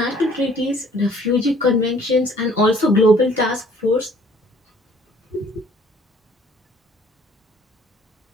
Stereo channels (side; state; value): both; normal; correlation 0.57